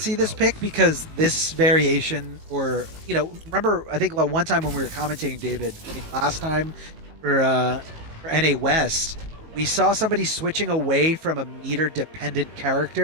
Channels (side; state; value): left; late; 18 ms